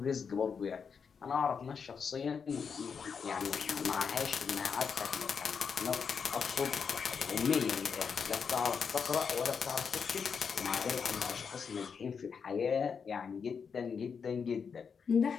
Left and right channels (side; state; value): right; quieter; 6.2 dB